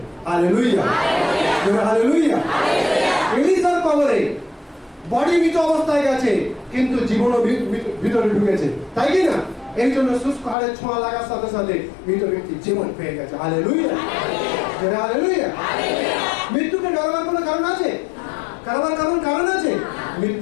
Hallelujah, hallelujah. এলিসার কবরে বডি মৃত অবস্থায় গেছে, কিন্তু জীবনও ভিতরে ঢুকেছে, তাই কি না? এই জন্য শুষ্ক হাড়ের ছোঁয়া লাগার সাথে সাথে মৃত ব্যক্তি জীবন পেয়ে গেছে। Hallelujah, hallelujah. মৃত্যুকে ডরাবার কোনো কারণ আছে? কারণ আছে?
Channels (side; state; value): right; drops out; at 10.6 s